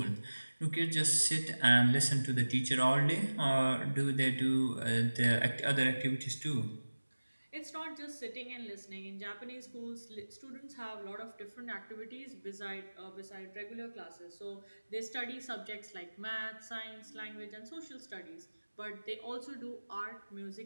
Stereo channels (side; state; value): both; inverted; correlation -1.00